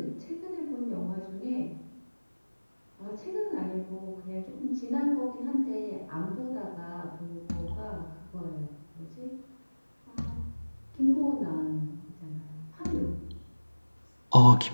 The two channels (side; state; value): both; inverted; correlation -1.00